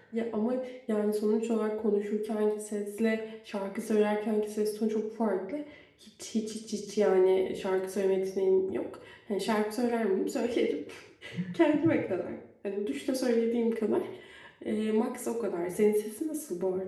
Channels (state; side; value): identical; both; correlation 1.00